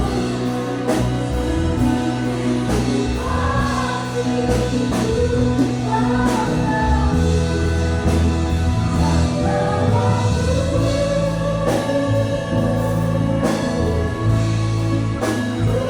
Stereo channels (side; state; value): both; identical; correlation 1.00